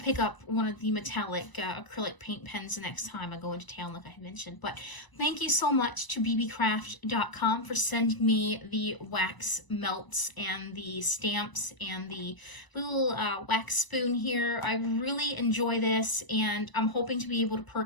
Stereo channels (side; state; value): right; late; 1.0 ms